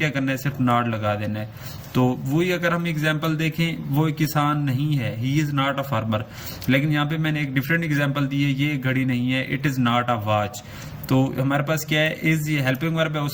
کرنا ہے؟ صرف ناٹ لگا دینا ہے. تو وہی اگر ہم ایگزامپل دیکھیں، وہ کسان نہیں ہے، ہی از ناٹ اے فارمر. لیکن یہاں پہ میں نے ایک ڈفرینٹ ایگزامپل دی ہے، یہ گھڑی نہیں ہے، it is not a watch. تو ہمارے پاس کیا ہے؟ از، یہ ہیلپنگ ورب ہے.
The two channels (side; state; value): both; identical; correlation 1.00